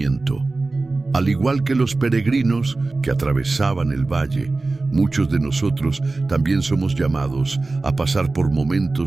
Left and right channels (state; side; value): quieter; left; 3.4 dB